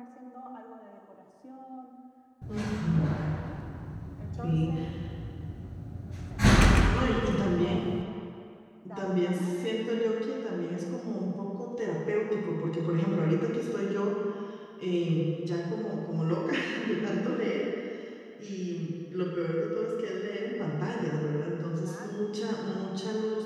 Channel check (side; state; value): both; identical; correlation 1.00